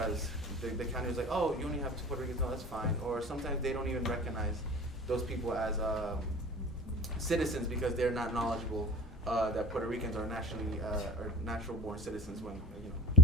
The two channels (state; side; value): normal; both; correlation 0.40